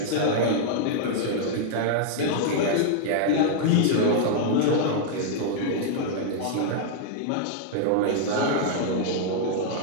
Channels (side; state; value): both; different; correlation -0.01